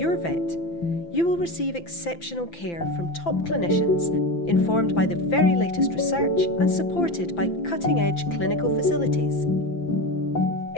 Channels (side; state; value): right; late; 5.9 ms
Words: vet, you will receive exceptional care from top clinicians, informed by the very latest research and supported by cutting-edge clinical facilities.